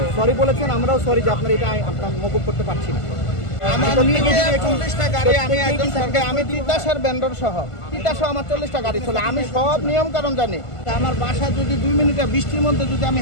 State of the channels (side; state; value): right; late; 1.5 ms